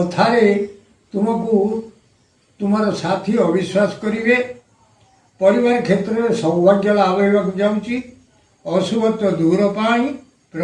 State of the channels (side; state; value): both; identical; correlation 1.00